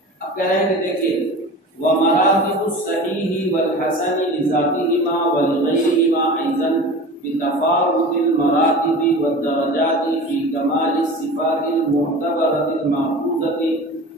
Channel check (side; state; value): both; normal; correlation 0.36